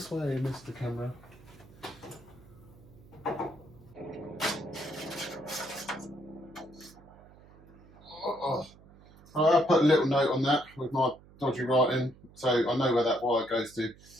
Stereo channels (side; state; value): right; noise; hum, 23 dB below the sound